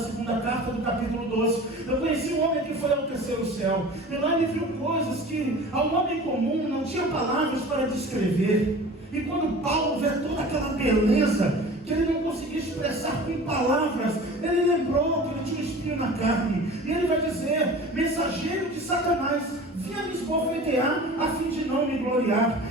carta do capítulo 12. Eu conheci um homem que foi ao terceiro céu, e lá ele viu coisas que ao homem comum não tinha palavras para descrever. E quando Paulo vê toda aquela beleza que ele não conseguia expressar com palavras, ele lembrou que ele tinha um espinho na carne, e ele vai dizer: mensageiro de Satanás, vinha me esbofetear a fim de não me gloriar.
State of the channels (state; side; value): normal; both; correlation 0.40